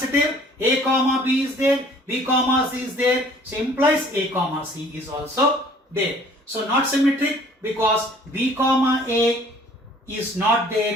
A comma B is there, B comma C is there, so implies A comma C is also there. So not symmetric because B comma A is not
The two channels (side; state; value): both; normal; correlation 0.54